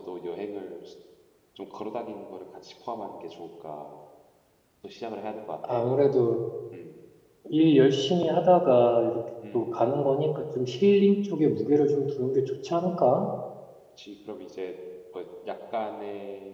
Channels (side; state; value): both; identical; correlation 1.00